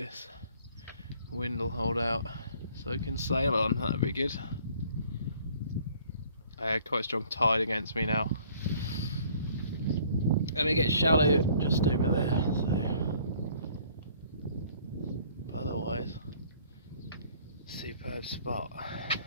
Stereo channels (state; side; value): inverted; both; correlation -0.57